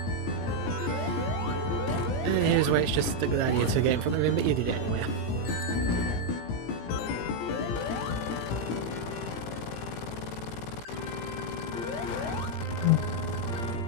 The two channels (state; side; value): late; right; 17 ms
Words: And here's where it's just a good idea to get in front of him, but you did it anyway.